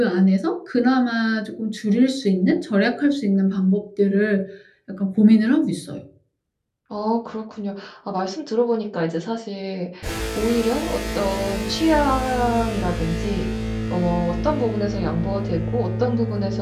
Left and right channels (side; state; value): both; identical; correlation 1.00